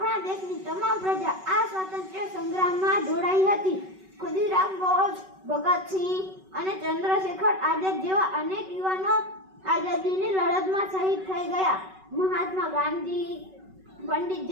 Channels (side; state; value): left; late; 5.3 ms